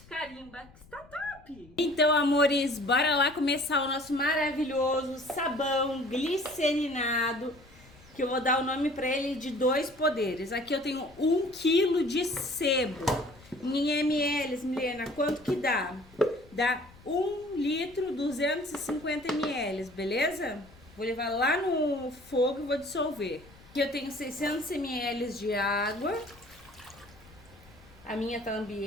carimba que está top! Então, amores, bora lá começar o nosso maravilhoso sabão glicerinado, que eu vou dar o nome para ele de 2 poderes. Aqui eu tenho 1 kg de sebo. Em ml, Milena, quanto que dá? Dá 1 litro, 250 ml, beleza? Vou levar lá no fogo e vou dissolver. Aqui eu tenho 600 ml de água. A minha tá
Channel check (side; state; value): left; noise; rumble, 24 dB below the sound